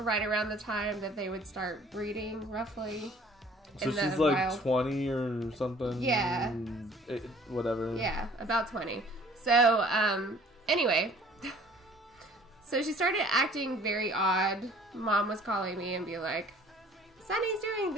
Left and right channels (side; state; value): both; normal; correlation 0.53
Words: around the time that they would start breeding, roughly. So she's like 20 or something. Yeah. Whatever. Yeah, about 20. So anyway, so she started acting very odd. Mom was calling me and be like, Sonny's doing